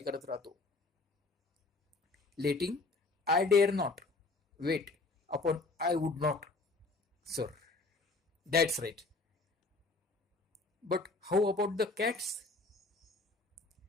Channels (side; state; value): right; quieter; 3.6 dB